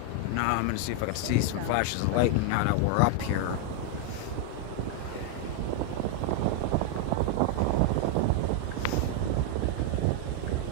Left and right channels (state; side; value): different; both; correlation 0.00